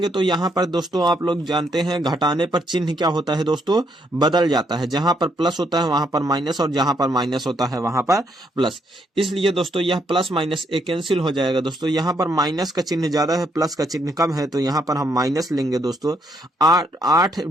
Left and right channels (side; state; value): both; normal; correlation 0.73